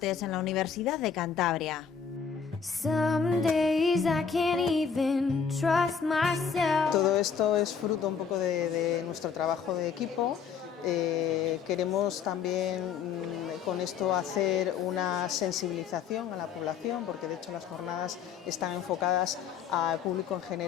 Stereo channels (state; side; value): quieter; right; 6.6 dB